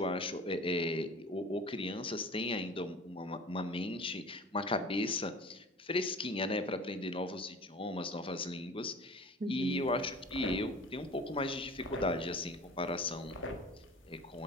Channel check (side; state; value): both; normal; correlation 0.40